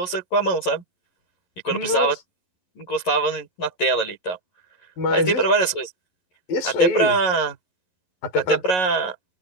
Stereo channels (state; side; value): late; right; 11 ms